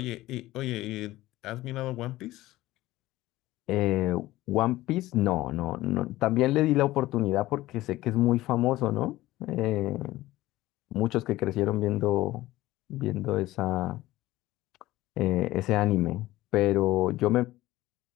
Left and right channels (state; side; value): quieter; right; 17.0 dB